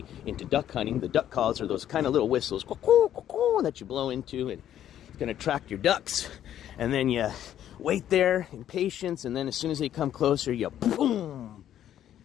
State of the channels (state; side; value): quieter; right; 11.0 dB